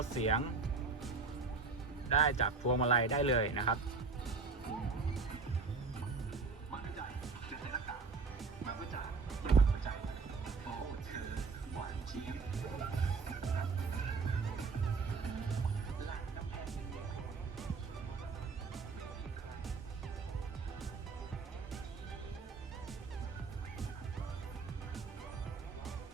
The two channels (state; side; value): quieter; left; 4.4 dB